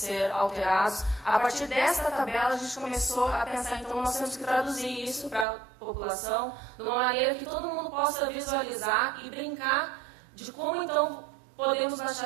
alterados. A partir dessa tabela, a gente começou a pensar, então, nós temos que traduzir isso para a população de uma maneira que todo mundo possa visualizar e brincar de como, então, podemos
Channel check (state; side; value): drops out; left; at 5.5 s